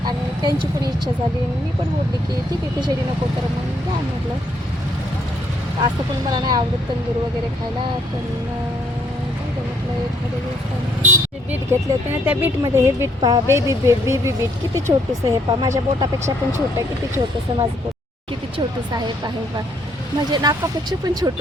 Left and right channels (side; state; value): both; normal; correlation 0.69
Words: आणि त्यांची पण इच्छा झाली. मी पण बोलली की ठीक आहे खिचडी नको तर मग द्या म्हटलं. असं पण मला नाही आवडत तंदूर वगैरे खायला. पण म्हटलं एखाद्या दिवसाने बीट घेतले होते ना, त्या बीटमध्ये हे बीट पहा, बेबी बीट किती छोटंसं. हे पहा माझ्या बोटापेक्षा पण छोटं आहे. किती छोटंसं माझं बोट, किती छोटंसं आहे पहा. म्हणजे नाकापेक्षा पण